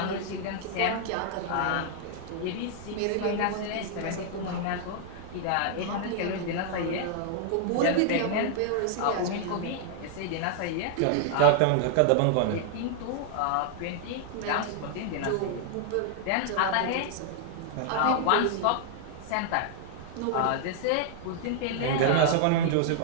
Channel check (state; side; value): different; both; correlation 0.00